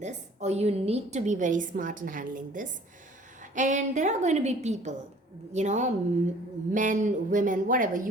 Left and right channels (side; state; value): both; normal; correlation 0.52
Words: or you need to be very smart in handling this. And there are going to be people, men, women, whatever.